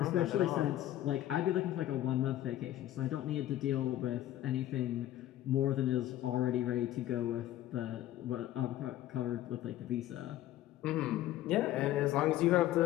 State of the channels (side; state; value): right; quieter; 13.7 dB